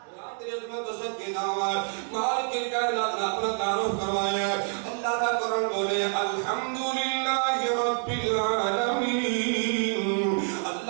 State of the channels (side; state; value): left; silent; 60 dB below the other